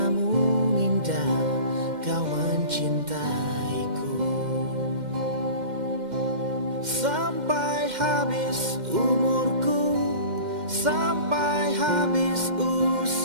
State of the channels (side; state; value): left; late; 2.1 ms